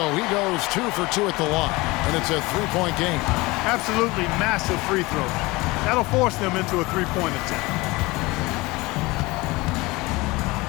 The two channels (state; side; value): quieter; right; 22.5 dB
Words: he goes 2 for 2 at the line, and it's a 3-point game. Absolutely massive free throw. That'll force them into a 3-point attempt.